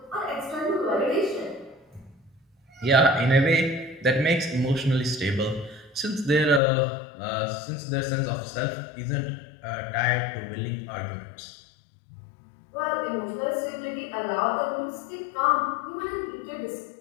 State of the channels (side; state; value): right; drops out; at 6.6 s